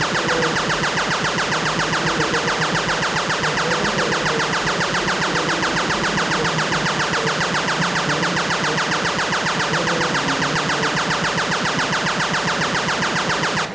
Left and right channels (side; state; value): left; noise; hum, 28 dB below the sound